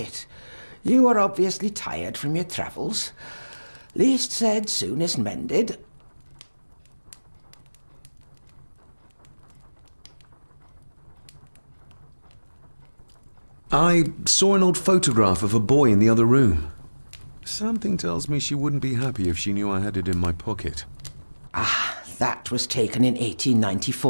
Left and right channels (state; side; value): inverted; both; correlation -1.00